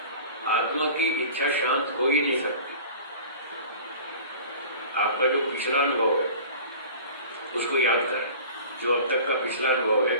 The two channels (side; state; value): both; inverted; correlation -0.41